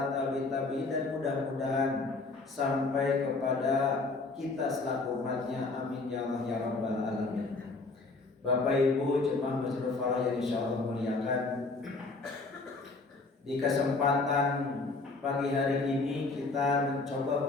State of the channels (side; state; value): right; quieter; 3.6 dB